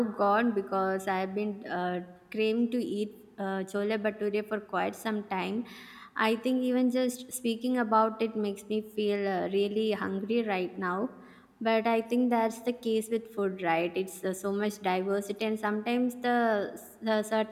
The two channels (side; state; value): both; identical; correlation 1.00